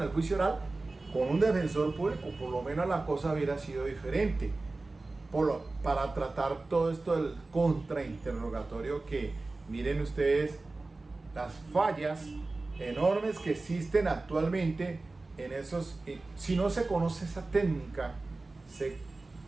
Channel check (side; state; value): left; quieter; 3.3 dB